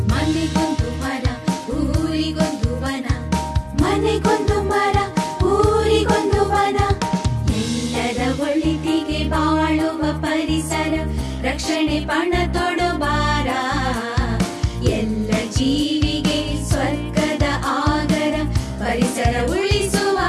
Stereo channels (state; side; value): identical; both; correlation 1.00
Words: ಮನೆಗೊಂದು ಮರ ಊರಿಗೊಂದು ವನ ಮನೆಗೊಂದು ಮರ ಊರಿಗೊಂದು ವನ ಎಲ್ಲರ ಒಳಿತಿಗೆ ಬಾಳುವ ಪರಿಸರ ರಕ್ಷಣೆ ಪಣ ತೊಡಬಾರ ಎಲ್ಲ ಜೀವಿಗೆ ಸ್ವರ್ಗದ ಆಗರ ಪರಿಸರ ಉಳಿಸುವ